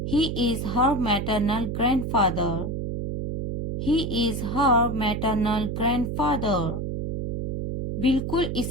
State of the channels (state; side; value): noise; right; hum, 3 dB below the sound